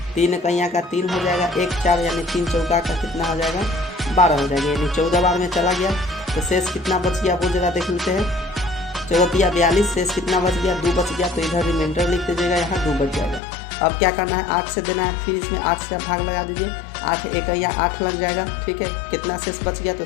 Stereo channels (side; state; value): right; drops out; at 13.4 s